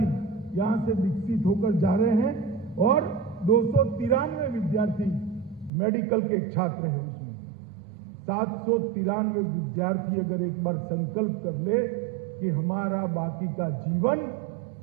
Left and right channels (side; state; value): left; drops out; at 5.7 s